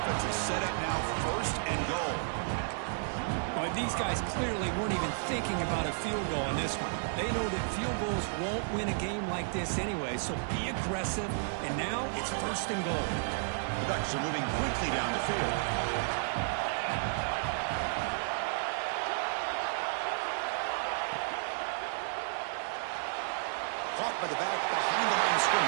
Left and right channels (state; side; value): silent; left; digital silence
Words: is set up now first and goal. But these guys clearly weren't even thinking about a field goal on this one. They know that field goals won't win a game like this anyway, so be aggressive, and now it's first and goal. The Ducks are moving quickly down the field. Caught by the back behind the line of